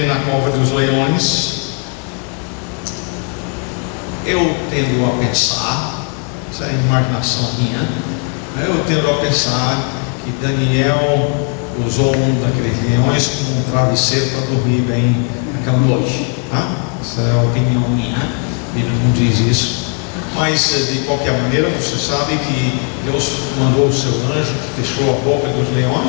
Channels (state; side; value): quieter; right; 37.7 dB